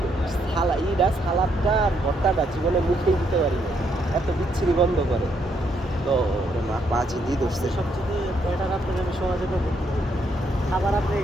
সালাদটা আর ভর্তাটা জীবনে মুখেই দিতে পারি না, এত বিচ্ছিরি গন্ধ করে। তো মা পাঁচই দিয়ে ধরছে। সবচেয়ে বেটার আপনাকে আমি সহজে করবো, খাবার আপনি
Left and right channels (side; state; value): both; normal; correlation 0.74